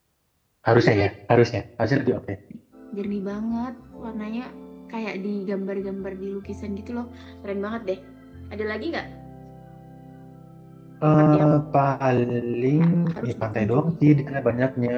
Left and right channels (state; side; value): identical; both; correlation 1.00